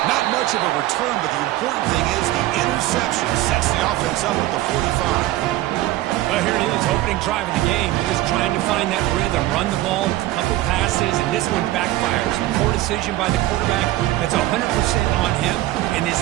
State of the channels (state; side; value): quieter; left; 16.1 dB